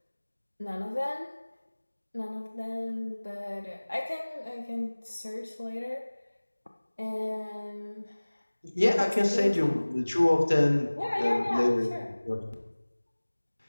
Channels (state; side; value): inverted; both; correlation -1.00